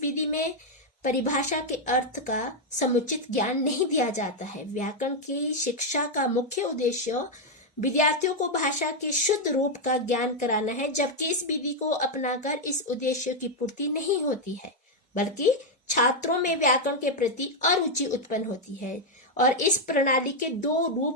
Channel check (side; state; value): both; normal; correlation 0.01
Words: विधि में परिभाषा के अर्थ का समुचित ज्ञान नहीं दिया जाता है। व्याकरण की शिक्षा का मुख्य उद्देश्य विद्यार्थियों को भाषा के शुद्ध रूप का ज्ञान कराना है, जबकि इस विधि को अपनाकर इस उद्देश्य की पूर्ति नहीं होती है, बल्कि छात्रों में व्याकरण के प्रति अरुचि उत्पन्न होती है। और इस प्रणाली के दो